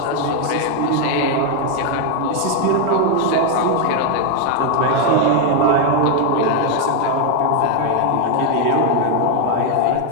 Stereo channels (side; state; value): both; different; correlation 0.01